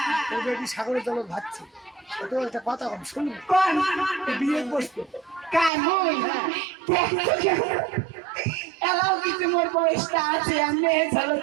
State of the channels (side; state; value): left; drops out; at 5.7 s